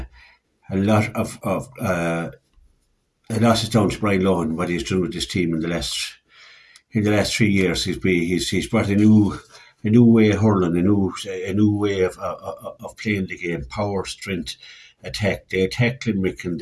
lot is down to Brian Lohan, what he's done with this team in the last 3 years. He's brought a new way of hurling, a new way of playing the game. Power, strength, attack. They attacked Limerick and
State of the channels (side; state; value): both; identical; correlation 1.00